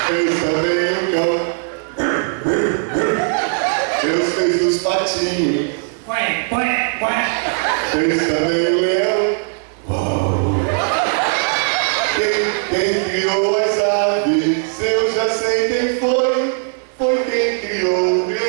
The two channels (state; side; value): silent; left; 67 dB below the other